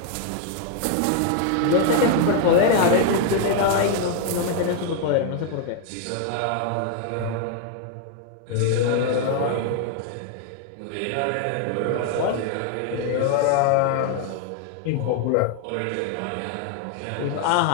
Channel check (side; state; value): both; different; correlation 0.00